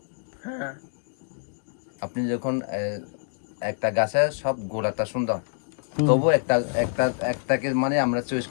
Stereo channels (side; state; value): right; silent; digital silence